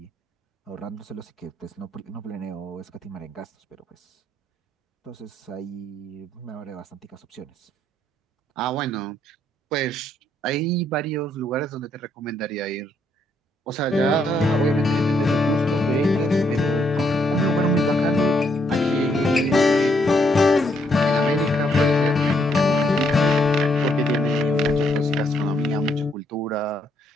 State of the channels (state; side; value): normal; both; correlation 0.73